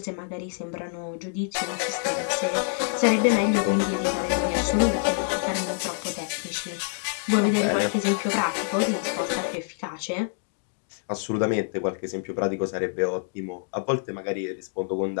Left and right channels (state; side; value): silent; right; 61 dB below the other